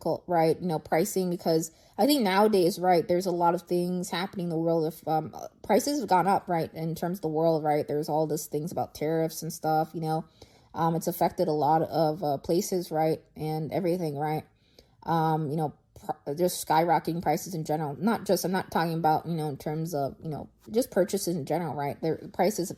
right? Pricing, because I think nowadays, right, there's a lot of things happening in the world. If prices have gone up, right, in terms of the world, right, there's all these things about tariffs and stuff, it's affected a lot of places, right, and everything, right? Just skyrocketing prices in general. I'm not talking about, in terms of, just purchases in general, right? Their prices have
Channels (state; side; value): identical; both; correlation 1.00